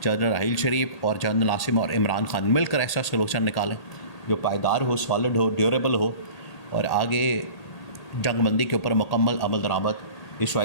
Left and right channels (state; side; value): late; right; 1.8 ms